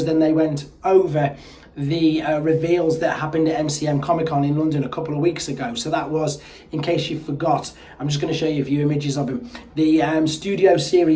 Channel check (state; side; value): identical; both; correlation 1.00